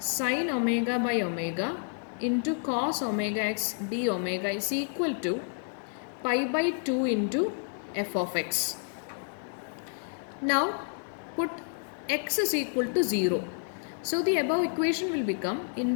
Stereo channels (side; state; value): right; silent; 58 dB below the other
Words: omega by omega into cos omega x d omega is equal to pi by 2 into f of x. Now put x is equal to 0. So the above equation will become